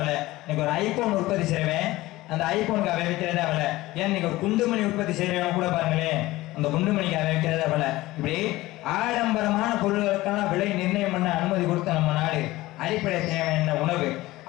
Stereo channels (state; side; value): quieter; right; 18.2 dB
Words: இன்னைக்கு ஒரு ஐபோன் உற்பத்தி செய்வேன், அந்த ஐபோனுக்கு அவை விற்கிறதா விலை. ஏன் இன்னைக்கு ஒரு குண்டுமணி உற்பத்தி செய்யறவங்க கூட பாருங்களேன், அந்த குண்டுமணிக்கு அவை விற்கிறதா விலை. இப்படி ஆடம்பரமான பொருட்களுக்கான விலை நிர்ணயம் பண்ண அனுமதி கொடுத்த நம்ம நாடு. அடிப்படை தேவை என்ன? உணவு.